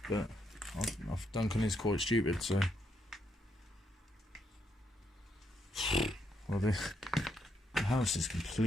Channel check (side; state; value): both; normal; correlation 0.77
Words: But Duncan is quite stupid, so. Well, the house is